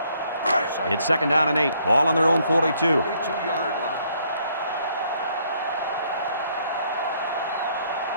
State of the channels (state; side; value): inverted; both; correlation -0.68